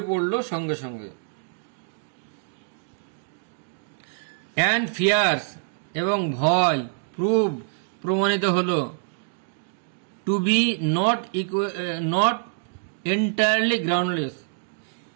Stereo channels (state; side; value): silent; left; digital silence